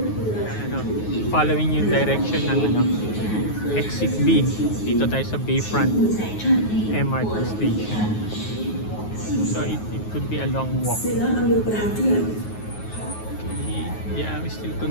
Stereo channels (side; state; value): right; late; 9.4 ms